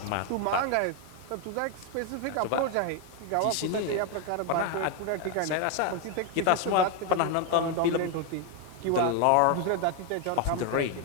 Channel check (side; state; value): both; different; correlation 0.01